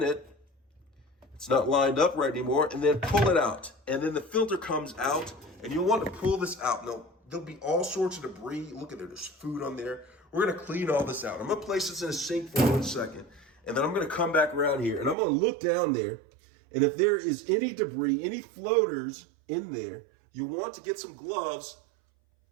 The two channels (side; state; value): left; drops out; at 15.2 s